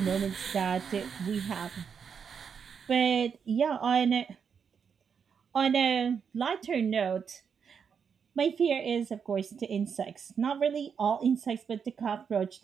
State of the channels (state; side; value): quieter; left; 6.7 dB